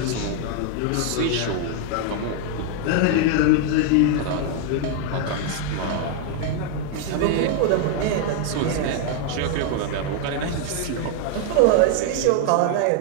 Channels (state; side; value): different; both; correlation 0.00